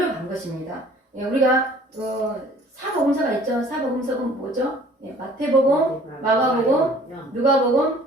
것입니다. 우리가 사복음서가 있죠. 사복음서는 뭐죠? 마태복음, 마가복음,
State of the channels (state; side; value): normal; both; correlation 0.53